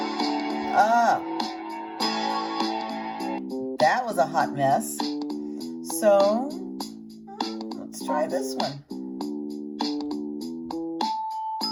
That was a hot mess. So let's try this one.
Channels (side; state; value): both; identical; correlation 1.00